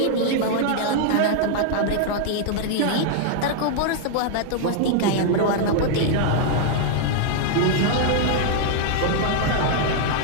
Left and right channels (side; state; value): both; different; correlation 0.00